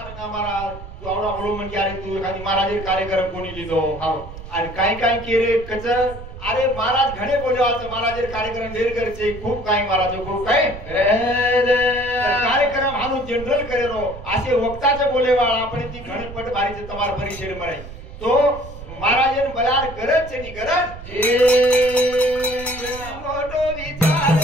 का महाराज तू आवडा बोलो म्हणजे अरे तू एखादी महाराज कार्यक्रम कोणी लिहितो आणि काय केले कच अरे महाराज घणे बोलवाचं महाराज कार्यक्रम ढेर करचे खूप काही महाराज खूप काही कार्यक्रम हानू जनरल करेलो असे वक्ताचे बोलेवाळ आपण ती घणपट बारीचे तमार परिषद म्हणाय तो महाराजन बलार गरज छे नी गरज मोठो विचार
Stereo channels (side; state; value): right; noise; rumble, 13 dB below the sound